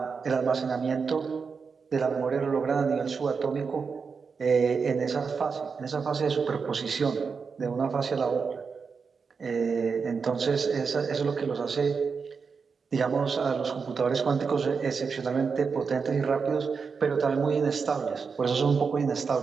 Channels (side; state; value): left; quieter; 5.4 dB